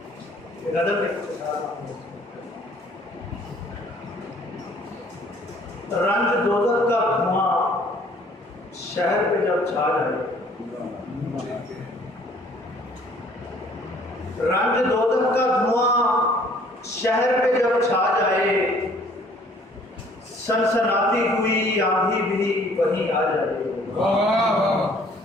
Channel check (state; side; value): normal; both; correlation 0.57